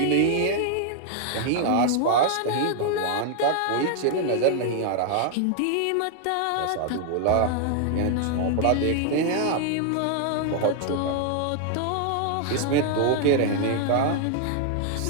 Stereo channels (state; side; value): different; both; correlation 0.00